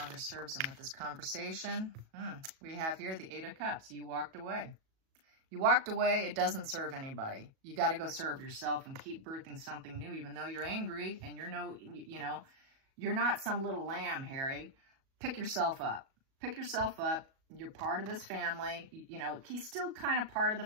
serves them with this conversation. We have here the 8 of Cups. You walked away. You walked away. It doesn't serve anybody. You got to go serve yourself and keep birthing something new, even though you're angry and you're you're not some little lamb, Harry. Pick yourself up. pick yourself up. You're part of this family. You know, he's still kind of part of the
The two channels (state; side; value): late; left; 37 ms